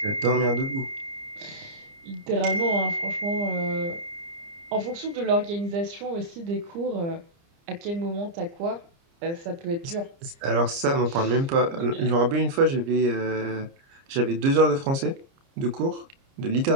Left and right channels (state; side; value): late; left; 30 ms